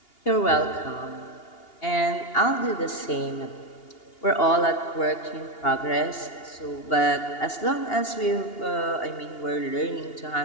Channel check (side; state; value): right; late; 2.8 ms